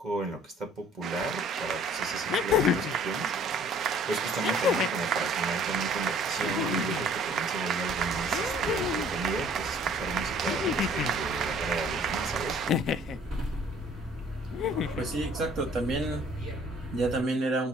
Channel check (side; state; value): both; normal; correlation 0.55